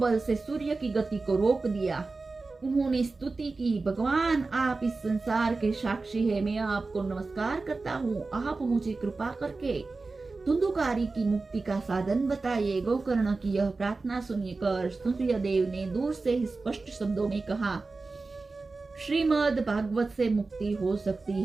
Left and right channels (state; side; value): quieter; left; 3.8 dB